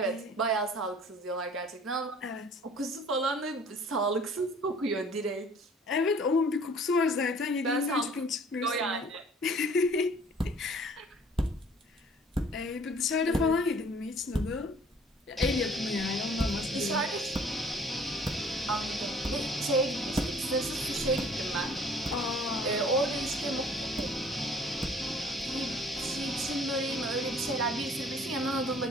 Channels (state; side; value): normal; both; correlation 0.54